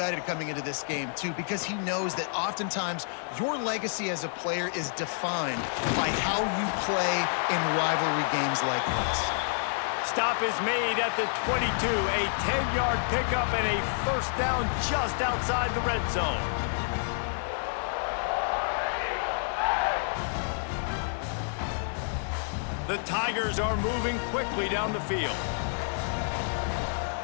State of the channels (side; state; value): right; silent; digital silence